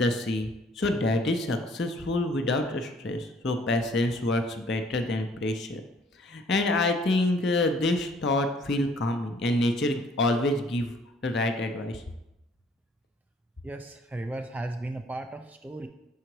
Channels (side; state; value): both; normal; correlation 0.59